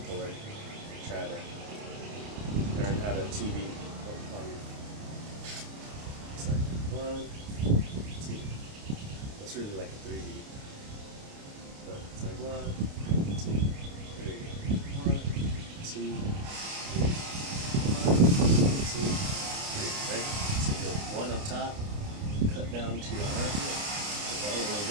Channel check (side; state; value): left; late; 29 ms